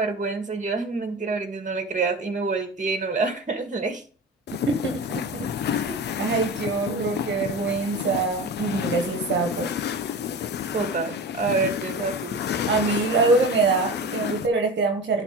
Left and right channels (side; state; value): both; normal; correlation 0.30